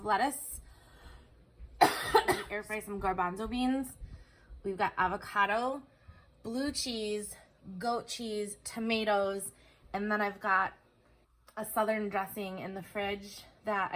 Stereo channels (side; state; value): both; identical; correlation 1.00